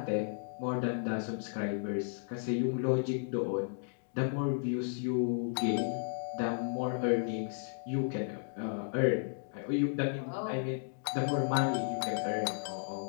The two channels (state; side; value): silent; right; digital silence